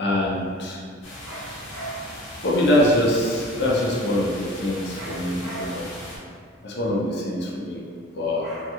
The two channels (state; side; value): normal; both; correlation 0.43